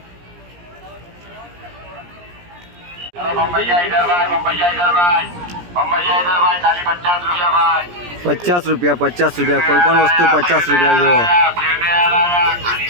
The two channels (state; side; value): late; left; 17 ms